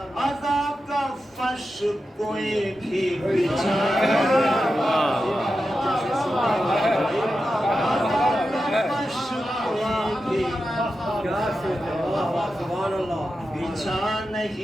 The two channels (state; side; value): normal; both; correlation 0.90